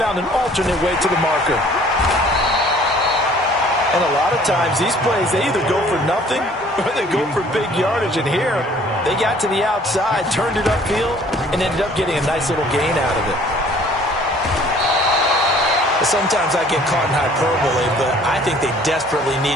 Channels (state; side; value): normal; both; correlation 0.55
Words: an alternate way to the marker. And a lot of times, these plays, they either go for nothing or they go for big yardage. And here, they got to the outside, turned it upfield, and ended up getting a nice little gain out of it. Sometimes I get caught in hyperbole, but I think they desperately